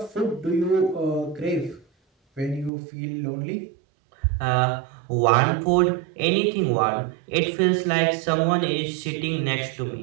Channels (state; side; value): drops out; left; at 2.7 s